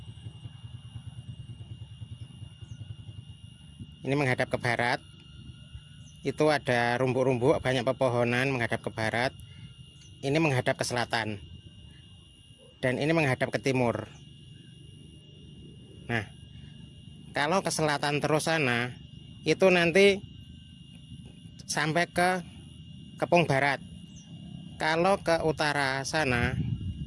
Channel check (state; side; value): identical; both; correlation 1.00